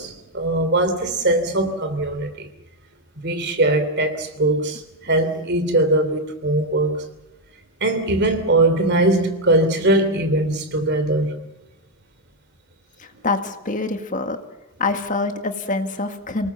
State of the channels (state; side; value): normal; both; correlation 0.02